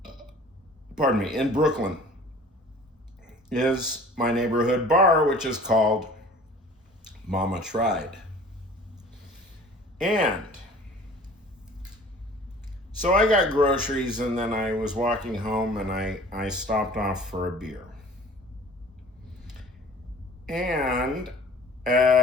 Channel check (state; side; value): normal; both; correlation 0.47